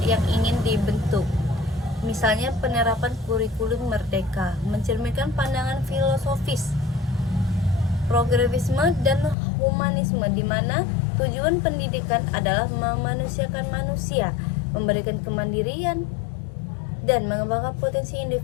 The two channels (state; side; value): drops out; right; at 9.3 s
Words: yang ingin dibentuk. Misalnya penerapan kurikulum merdeka, mencerminkan pandangan filosofis, progresisme dan humanisme, di mana tujuan pendidikan adalah memanusiakan manusia, memberikan kemandirian, dan mengembangkan potensi